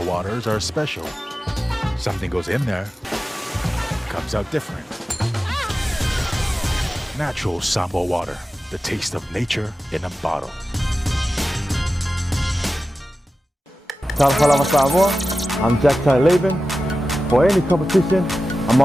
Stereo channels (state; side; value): normal; both; correlation 0.94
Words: waters are special. Something goes in there, comes out different. Natural Samoa water, the taste of nature in a bottle. Kalama Samoa, I'm Jack Laban. For any competition, I'm